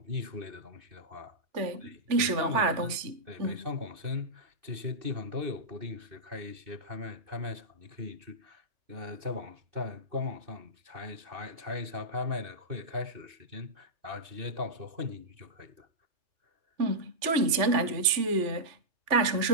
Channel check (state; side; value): late; left; 3.4 ms